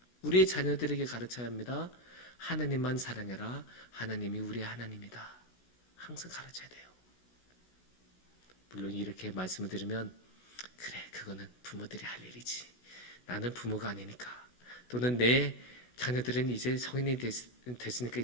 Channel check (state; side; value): late; right; 17 ms